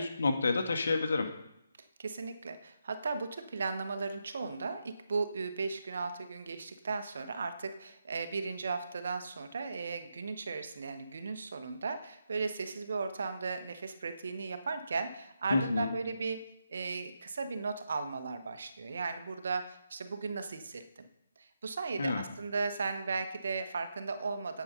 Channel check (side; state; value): both; inverted; correlation -0.84